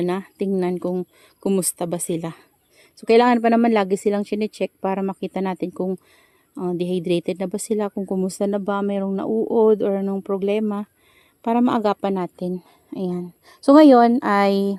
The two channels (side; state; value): both; identical; correlation 1.00